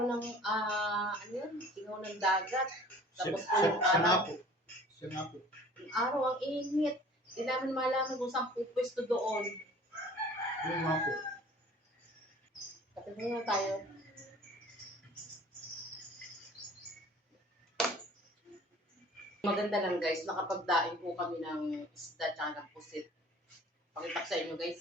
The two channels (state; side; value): normal; both; correlation 0.48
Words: ng, ano yun? Singaw ng dagat. Tapos po yung araw. Siya nga po. Yung araw, ang init. Hindi namin malaman kung saan pupwesto doon. Yung nga po. Kapit na tayo. Maganda lang guys, nakapagdaing po kami ng isda tsaka ng pusit. Pakita ko sa inyo